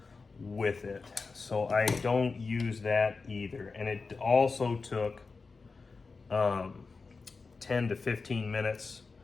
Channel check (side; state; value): right; quieter; 4.3 dB